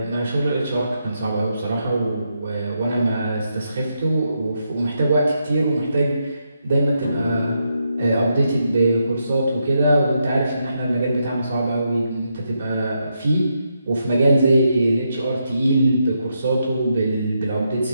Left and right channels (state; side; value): inverted; both; correlation -0.82